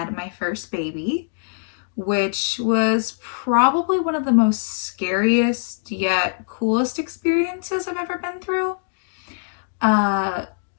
my first baby, which was probably one of the most scariest yet coolest experiences I've ever been through.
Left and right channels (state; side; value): silent; right; digital silence